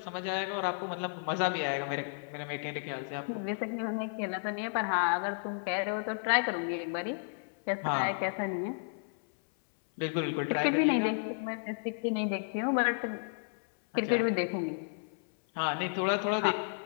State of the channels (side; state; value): right; silent; 56 dB below the other